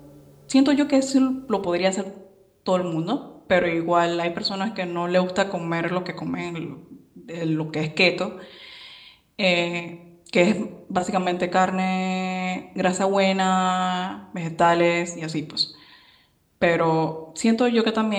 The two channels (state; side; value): identical; both; correlation 1.00